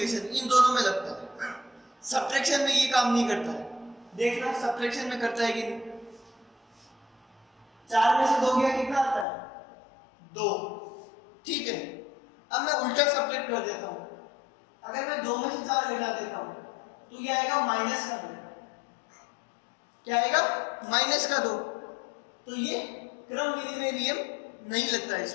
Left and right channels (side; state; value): right; drops out; at 9.2 s